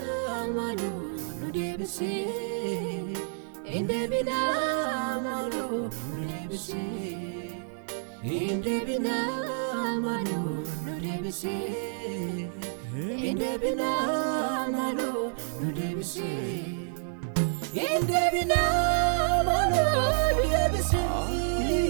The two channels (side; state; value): left; silent; digital silence